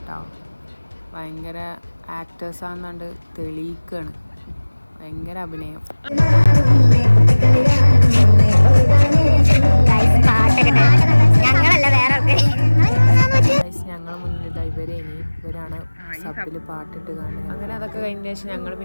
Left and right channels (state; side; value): inverted; both; correlation -1.00